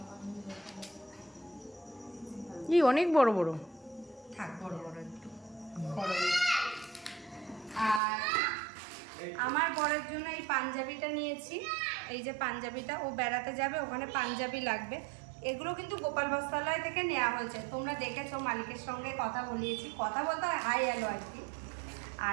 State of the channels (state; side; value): drops out; left; at 8.0 s